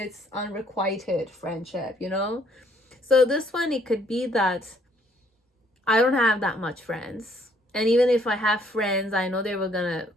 unrequited friendship, So this one, it could be that I don't have that much friends. And even if I have friends, I know they were gonna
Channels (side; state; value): both; normal; correlation 0.65